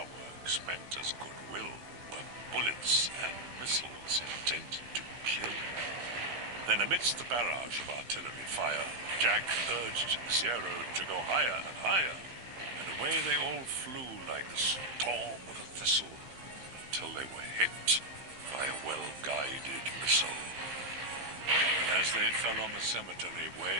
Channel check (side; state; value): left; late; 15 ms